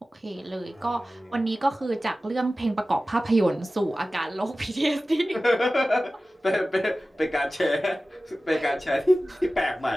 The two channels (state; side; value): normal; both; correlation 0.96